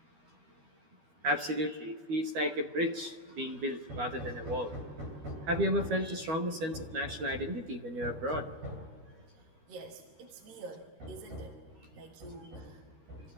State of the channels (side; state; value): left; late; 12 ms